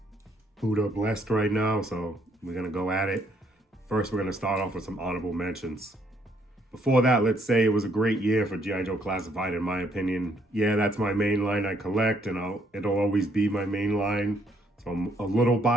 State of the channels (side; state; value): both; normal; correlation 0.69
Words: Buddha blessed right now, so we're going to go at it. First, we're going to start off with some honorable mentions. Before that, let's say it was a great year for G.I. Joe Classified, in my opinion. Yeah, that's my main line I collect, and it'll always be my main line. So I'm a little